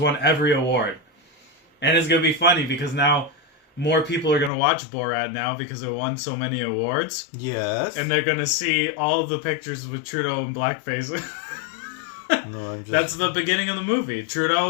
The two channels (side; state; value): right; drops out; at 4.5 s